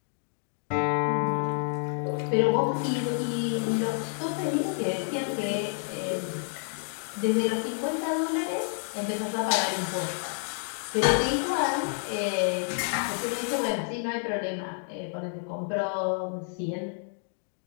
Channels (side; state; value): right; silent; 59 dB below the other